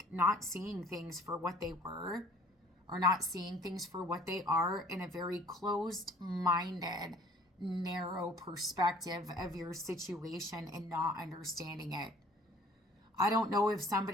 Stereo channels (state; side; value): normal; both; correlation 0.52